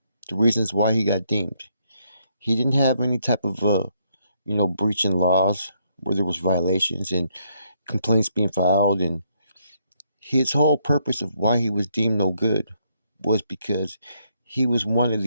The reasons why he got deemed. He didn't have any type of, breaching laws where there was violations and complaints being filed. And his whole purpose of why he was deemed no good was because he was one of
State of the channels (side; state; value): both; inverted; correlation -0.73